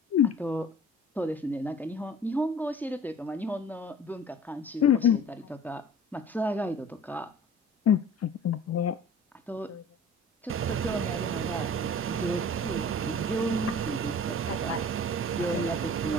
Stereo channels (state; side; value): normal; both; correlation 0.43